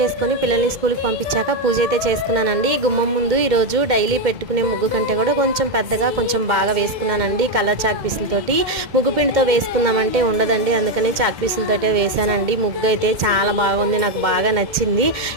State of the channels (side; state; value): left; late; 2.1 ms